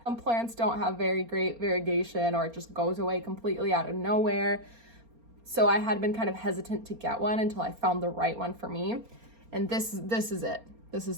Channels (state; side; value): late; left; 4.3 ms